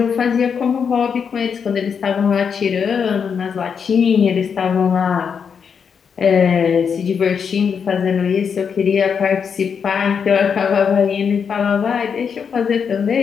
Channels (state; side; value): quieter; right; 6.7 dB